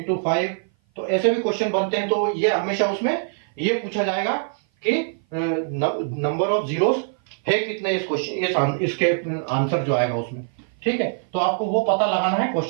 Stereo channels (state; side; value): silent; left; 57 dB below the other